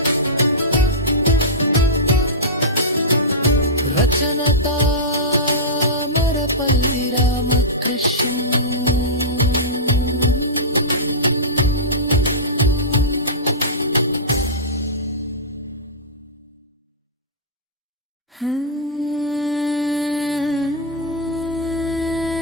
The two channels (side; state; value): both; normal; correlation -0.16